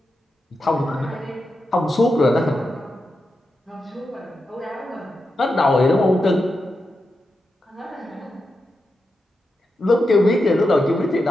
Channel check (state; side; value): normal; both; correlation 0.88